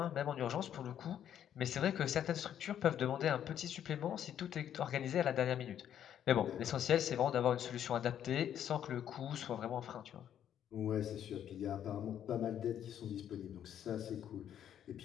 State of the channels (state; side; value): quieter; right; 10.0 dB